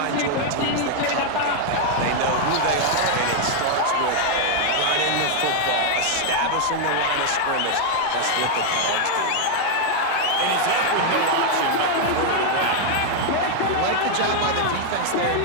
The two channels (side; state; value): both; different; correlation 0.00